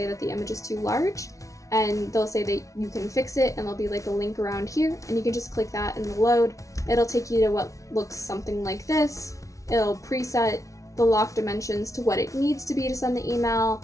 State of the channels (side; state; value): right; late; 0.16 ms